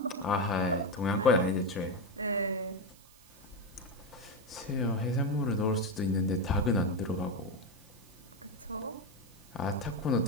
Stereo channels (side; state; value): right; noise; hiss, 25 dB below the sound